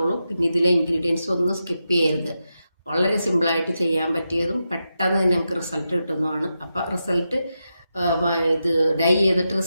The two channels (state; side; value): inverted; both; correlation -0.88